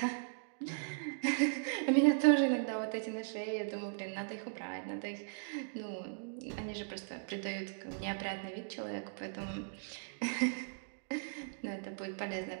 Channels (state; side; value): silent; left; digital silence